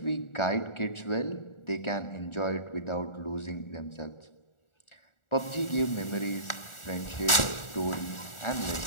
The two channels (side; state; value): right; late; 1.4 ms